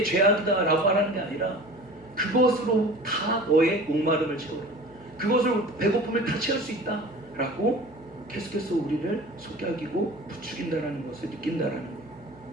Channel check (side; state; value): left; noise; hum, 25 dB below the sound